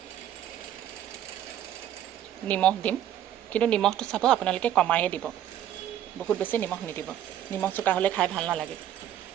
নিমখ দিম, কিন্তু নিমখটো চাব আপোনালোকে কমায়ে দিব, বহুত বেছি নিমখ নিদিব। নিমখ চোকা হ'লে খাই ভাল নালাগে।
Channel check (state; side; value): quieter; left; 11.1 dB